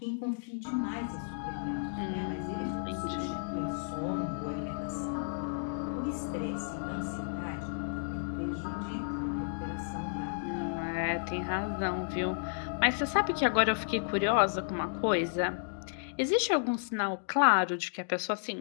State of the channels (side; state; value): right; silent; digital silence